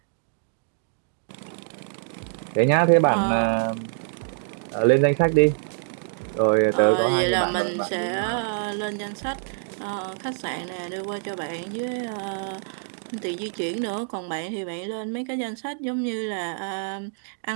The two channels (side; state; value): left; silent; digital silence